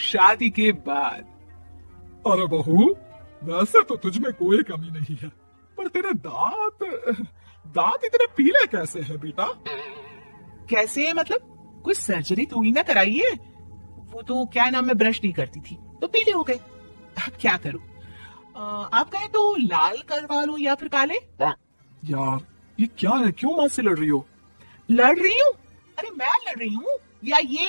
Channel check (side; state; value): both; inverted; correlation -1.00